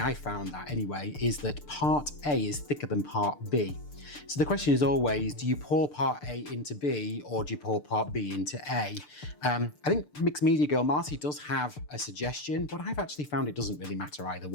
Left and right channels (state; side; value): late; right; 6.8 ms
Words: found that anyway, is that part A is thicker than part B. So the question is always, do you pour part A into B, or do you pour part B into A? I think Mixed Media Girl Marcy does have a suggestion, but I've actually found it doesn't really matter either